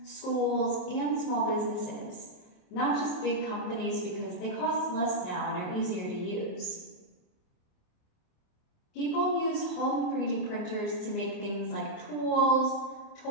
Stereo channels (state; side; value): late; right; 27 ms